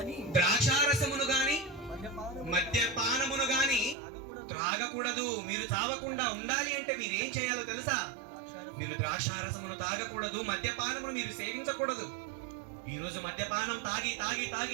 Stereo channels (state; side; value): drops out; left; at 4.0 s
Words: ద్రాక్షారసమును గాని మద్యపానమును గాని త్రాగకూడదు. మీరు చావకుండా ఉండాలి అంటే మీరు ఏం చేయాలో తెలుసా? మీరు ద్రాక్షారసమును తాగకూడదు, మద్యపానమును మీరు సేవించకూడదు. ఈ రోజు మద్యపానం తాగి తాగి